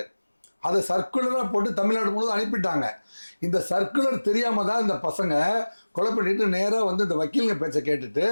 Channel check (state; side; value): inverted; both; correlation -1.00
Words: அதை சர்க்குலராக போட்டு தமிழ்நாடு முழுவதும் அனுப்பிட்டாங்க. இந்த சர்க்குலர் தெரியாமல் தான் இந்த பசங்க கொலை பண்ணிட்டு நேராக வந்து இந்த வக்கீலுங்க பேச்சை கேட்டுட்டு